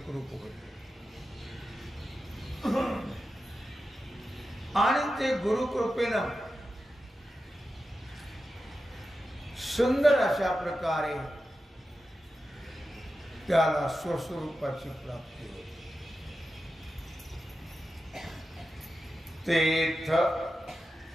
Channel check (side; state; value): both; normal; correlation 0.91